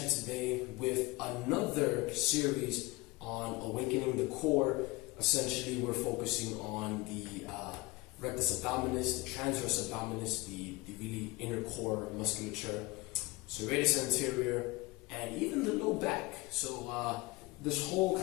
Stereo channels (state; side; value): quieter; right; 22.0 dB